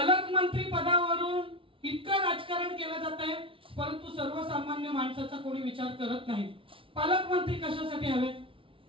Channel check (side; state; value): left; late; 0.25 ms